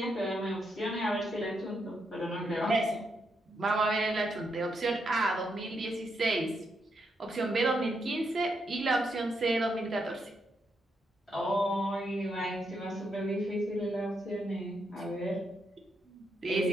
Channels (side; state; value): both; normal; correlation 0.80